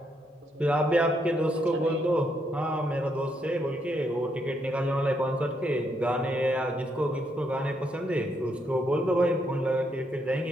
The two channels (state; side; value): normal; both; correlation 0.76